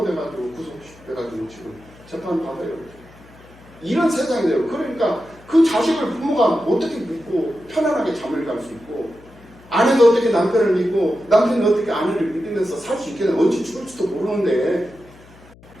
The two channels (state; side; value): noise; left; hum, 24 dB below the sound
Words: 구속돼가지고 지금 재판 받아요. 이런 세상이 돼요. 그러니까 그 자식을 부모가 어떻게 믿고 편안하게 잠을 갈 수 있고, 아내가 어떻게 남편을 믿고 남편이 어떻게 아내를 믿으면서 살 수 있겠냐. 언제 죽을지도 모르는데